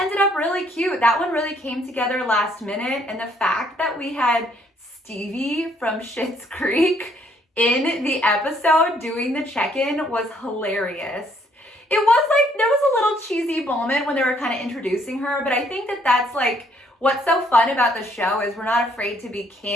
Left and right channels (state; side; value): normal; both; correlation 0.66